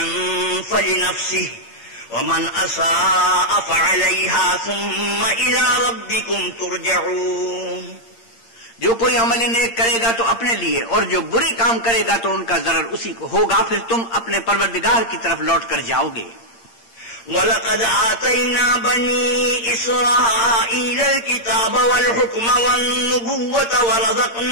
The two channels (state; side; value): late; right; 8.7 ms